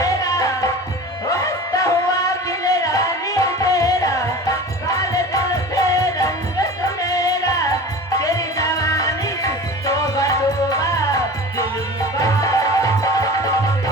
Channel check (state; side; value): normal; both; correlation 0.36